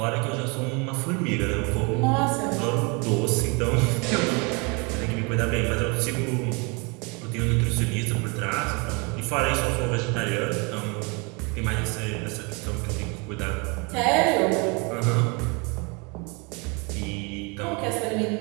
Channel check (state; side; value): quieter; left; 30.8 dB